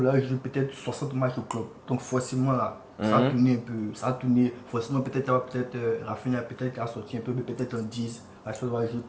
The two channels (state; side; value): identical; both; correlation 1.00